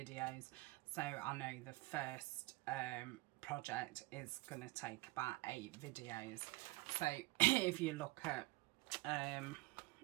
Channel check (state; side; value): quieter; left; 21.7 dB